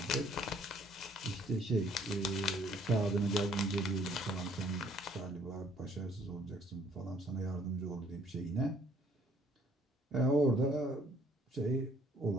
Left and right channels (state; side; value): normal; both; correlation 0.62